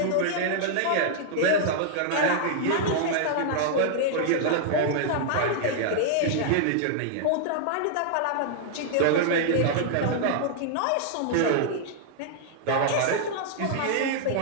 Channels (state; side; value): different; both; correlation -0.01